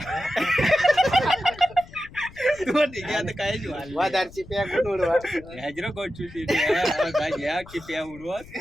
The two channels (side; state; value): left; noise; rumble, 20 dB below the sound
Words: तुम्हा ठीक आहे आता काय वादारची प्या कोण उडवा हजरो गोचू घ्या की प्या उडवत